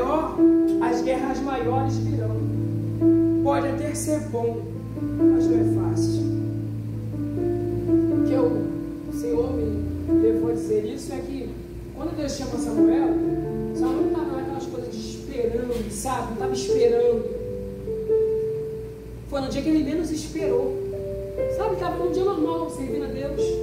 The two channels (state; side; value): identical; both; correlation 1.00